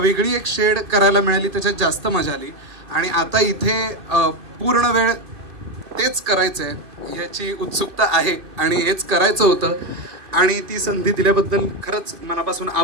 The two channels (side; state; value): left; late; 2.6 ms